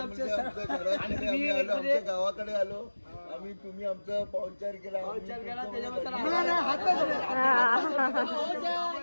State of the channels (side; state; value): both; inverted; correlation -1.00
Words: आमच्या गावाकडे आलो आम्ही. तुम्ही आमचा पाहुणचार केला.